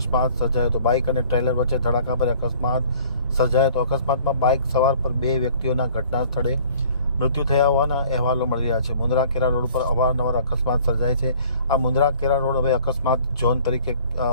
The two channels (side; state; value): both; inverted; correlation -0.52